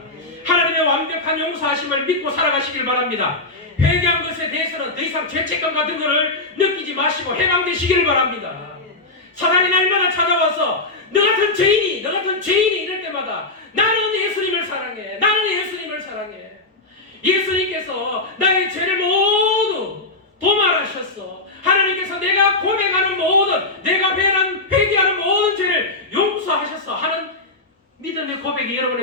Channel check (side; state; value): right; quieter; 3.1 dB